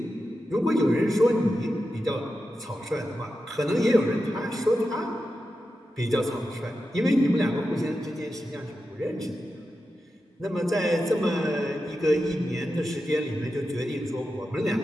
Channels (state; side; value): normal; both; correlation 0.90